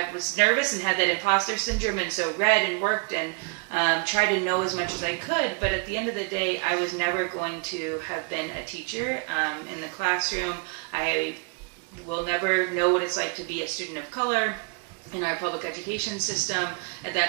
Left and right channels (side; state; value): left; quieter; 37.0 dB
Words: nervous and had that imposter syndrome, and so read and worked and tried to know as much as I could. But at the end of the day, I was never going to have been a teacher in the classroom. I will never know what it's like to be a student of color in our public education system. At